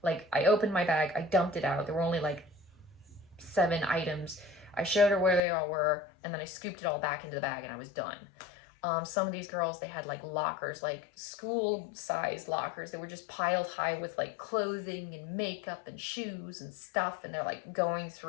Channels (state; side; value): drops out; right; at 5.4 s